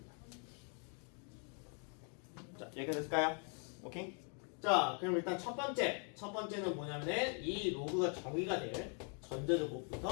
자, 여기까지 됐을까요? 오케이? 자, 그럼 일단 첫 번째는 뭐냐면은 이 로그가 정의가 될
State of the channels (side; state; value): right; quieter; 39.7 dB